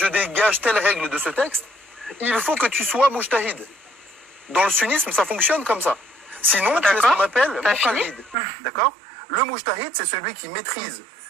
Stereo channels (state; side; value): drops out; left; at 8.3 s